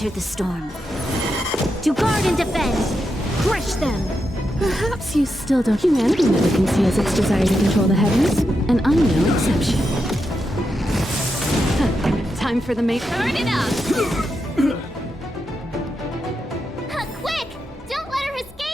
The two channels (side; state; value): both; normal; correlation 0.85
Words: the storm. To guard and defend! Crush them! Perhaps you still don't. Humanity never conceals its desire to control the heavens, and I'm no exception. Time for the main. Turn it up! Quick! Don't let her